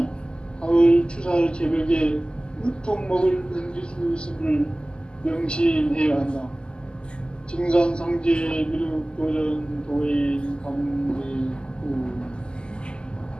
가을 추살 개벽에 으통먹을 넘길 수 있음을 명심해야 한다. 증산상제 미륵도전 도인 강대구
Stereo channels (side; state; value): right; late; 0.048 ms